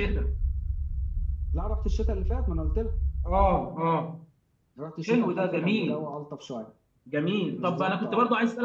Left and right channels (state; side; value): identical; both; correlation 1.00